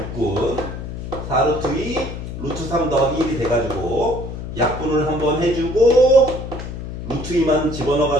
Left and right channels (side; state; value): left; noise; hum, 8 dB below the sound